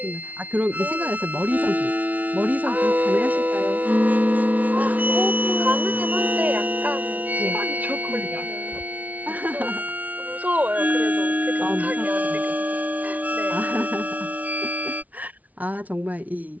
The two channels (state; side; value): late; left; 0.072 ms